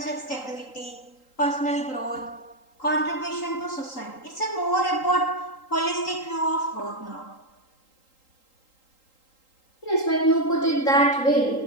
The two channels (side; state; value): right; late; 3.8 ms